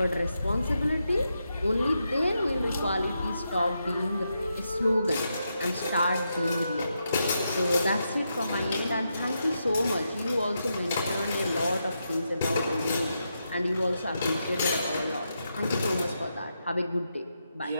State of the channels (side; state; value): both; inverted; correlation -0.84